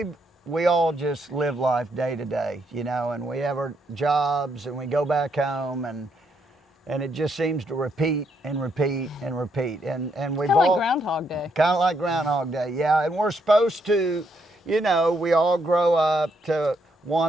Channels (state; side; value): normal; both; correlation 0.75